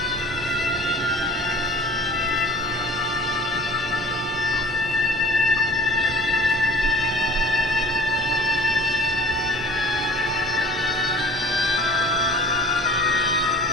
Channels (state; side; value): normal; both; correlation 0.46